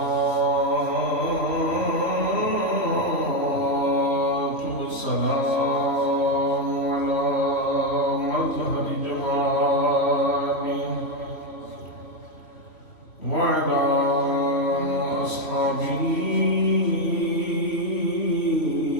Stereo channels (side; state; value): right; late; 3.1 ms